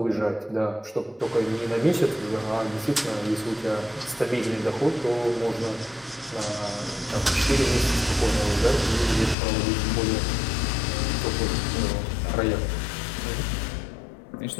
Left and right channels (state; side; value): drops out; right; at 9.3 s